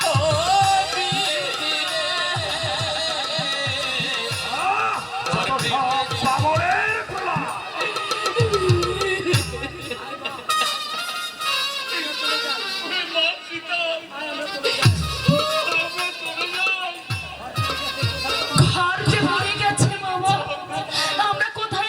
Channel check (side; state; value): both; identical; correlation 1.00